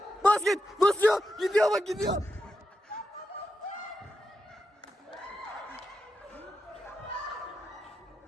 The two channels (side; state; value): both; normal; correlation 0.87